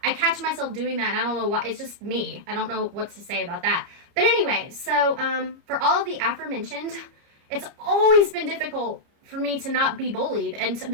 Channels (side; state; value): left; late; 30 ms